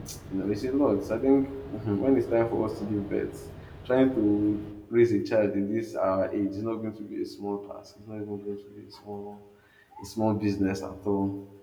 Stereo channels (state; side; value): identical; both; correlation 1.00